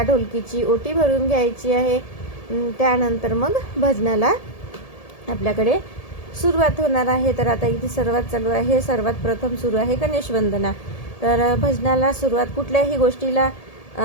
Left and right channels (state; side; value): late; right; 1.8 ms